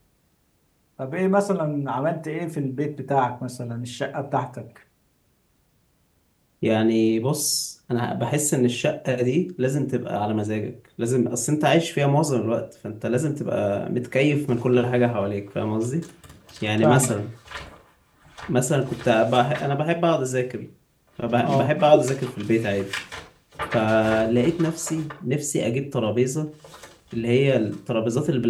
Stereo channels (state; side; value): identical; both; correlation 1.00